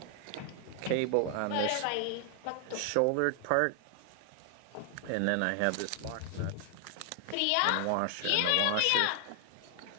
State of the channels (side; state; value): both; different; correlation 0.00